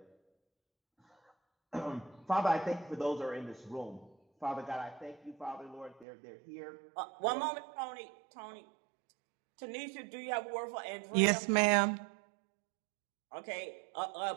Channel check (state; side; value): drops out; left; at 6.1 s